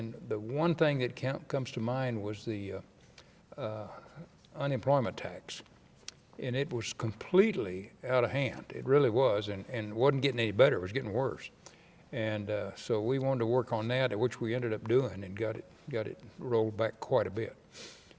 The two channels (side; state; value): both; identical; correlation 1.00